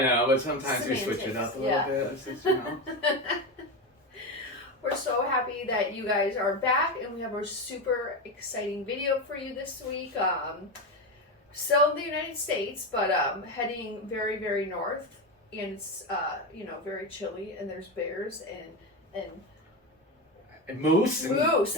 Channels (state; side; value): normal; both; correlation 0.16